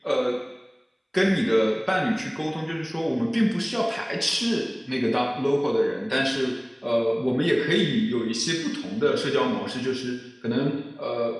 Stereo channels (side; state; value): both; identical; correlation 1.00